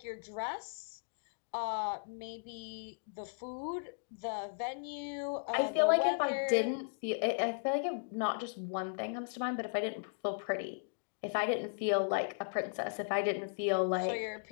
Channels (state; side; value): silent; right; digital silence